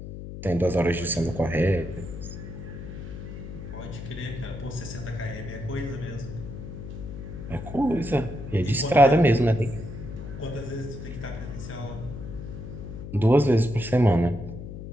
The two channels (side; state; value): left; noise; hum, 10 dB below the sound